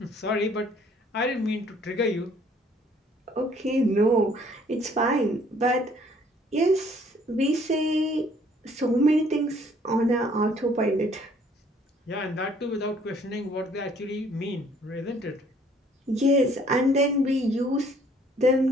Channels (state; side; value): normal; both; correlation 0.60